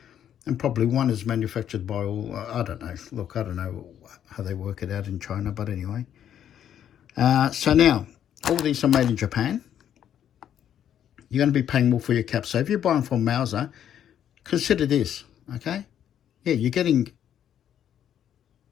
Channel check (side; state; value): right; quieter; 9.9 dB